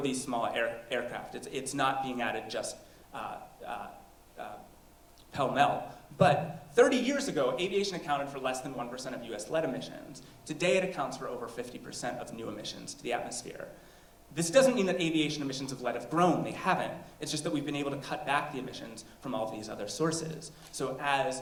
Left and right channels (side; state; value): both; identical; correlation 1.00